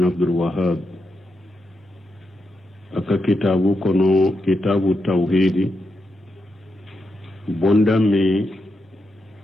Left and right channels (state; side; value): normal; both; correlation 0.84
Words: عبد الوهاب aka kitabu kono kitabu tawhidi bonda mi